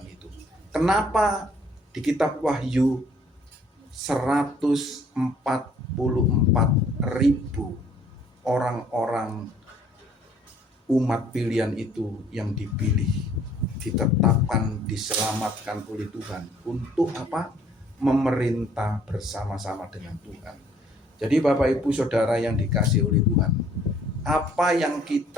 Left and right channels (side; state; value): both; normal; correlation 0.60